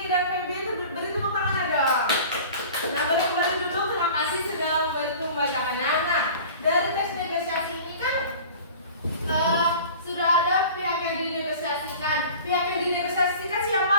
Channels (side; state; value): both; inverted; correlation -0.42